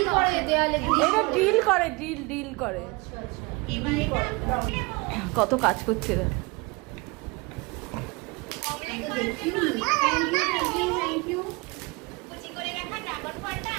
করে দেয়ালে। এটা ডিল করে। কত কাজ করছে এরা।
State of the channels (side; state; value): left; quieter; 25.9 dB